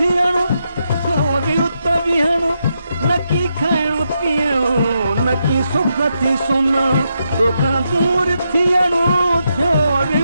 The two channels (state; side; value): inverted; both; correlation -0.82